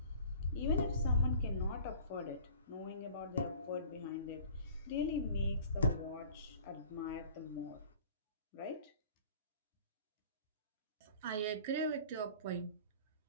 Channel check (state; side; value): inverted; both; correlation -0.46